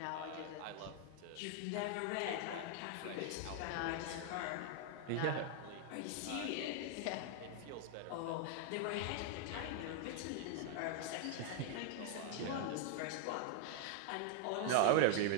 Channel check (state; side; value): different; both; correlation 0.00